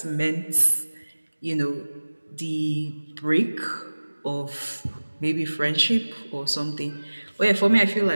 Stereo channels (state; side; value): inverted; both; correlation -1.00